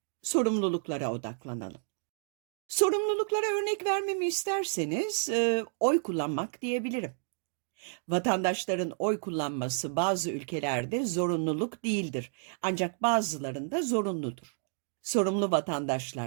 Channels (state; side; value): silent; left; digital silence